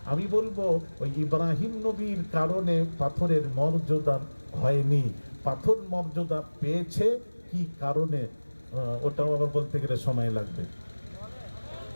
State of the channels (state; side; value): inverted; both; correlation -1.00